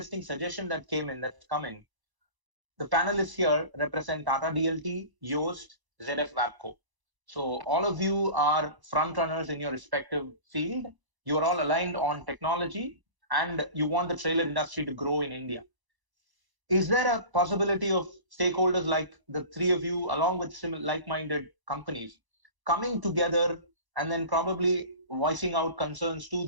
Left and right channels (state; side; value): late; left; 1.0 ms